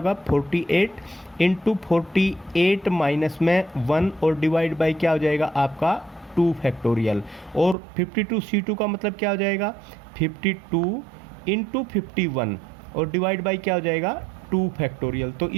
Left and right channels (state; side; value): drops out; left; at 7.8 s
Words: 48 इंटू 48 माइनस में 1 और डिवाइड बाई क्या हो जाएगा आपका 2 फैक्टोरियल। और 52C2 का मतलब क्या हो जाएगा, 52 इंटू 51 और डिवाइड बाई क्या हो जाएगा 2 फैक्टोरियल। तो